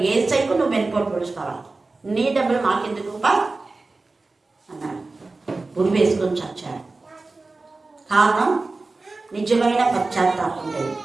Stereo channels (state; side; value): quieter; left; 3.5 dB